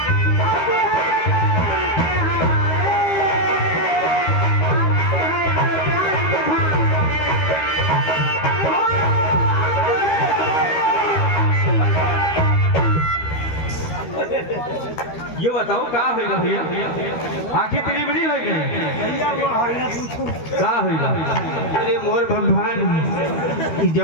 ये बताओ का होगा भैया, आंखें तेरी बड़ी हो गई का होगा? अरे मोर भगवान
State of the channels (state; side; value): late; right; 13 ms